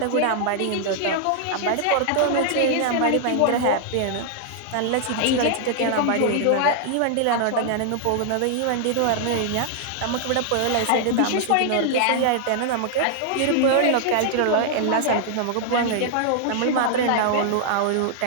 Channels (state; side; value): different; both; correlation 0.00